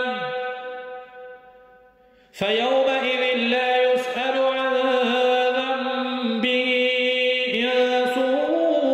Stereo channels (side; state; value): both; identical; correlation 1.00